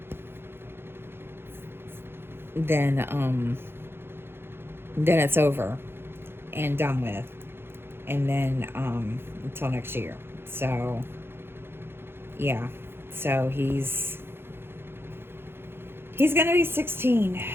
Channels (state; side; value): late; left; 0.11 ms